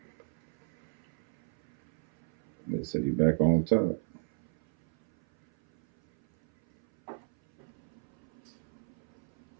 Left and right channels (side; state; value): left; silent; 56 dB below the other